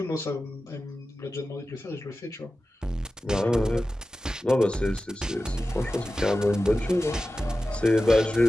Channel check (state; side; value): normal; both; correlation 0.94